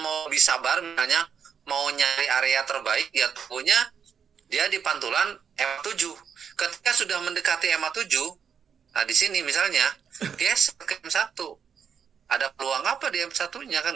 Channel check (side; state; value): left; quieter; 7.3 dB